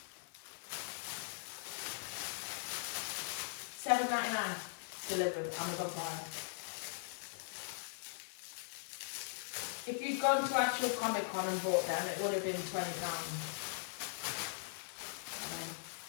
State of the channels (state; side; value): silent; right; 51 dB below the other